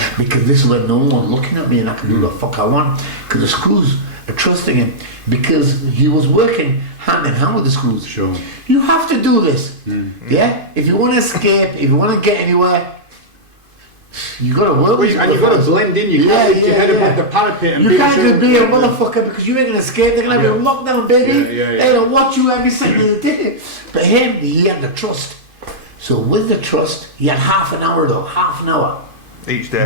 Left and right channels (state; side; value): late; left; 2.5 ms